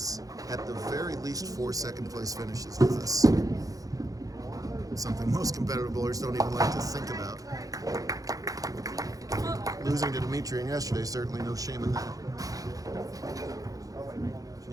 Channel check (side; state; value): left; late; 0.17 ms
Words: at the very least, 4 second-place finishes with us. Something most competitive bowlers don't even like to think about. Losing to Demetri yesterday, certainly no shame in that.